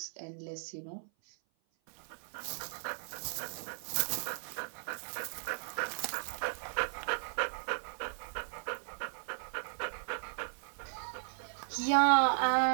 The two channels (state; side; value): silent; left; 54 dB below the other